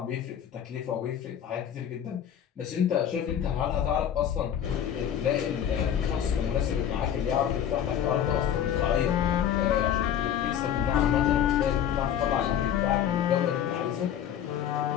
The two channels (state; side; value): quieter; right; 9.5 dB